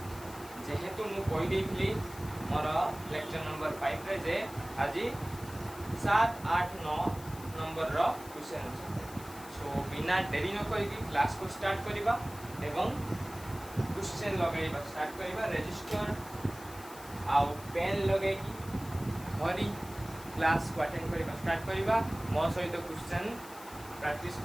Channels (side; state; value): left; noise; hiss, 18 dB below the sound